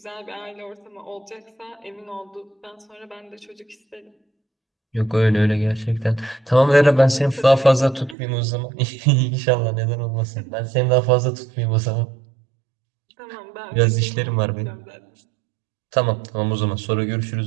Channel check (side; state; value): left; drops out; at 8.2 s